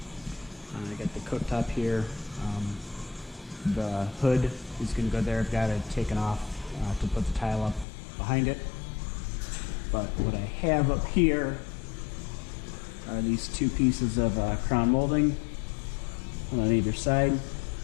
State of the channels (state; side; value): drops out; right; at 7.9 s